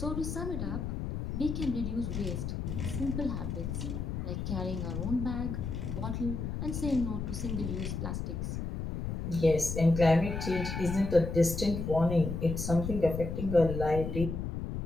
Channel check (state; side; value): noise; left; rumble, 4 dB below the sound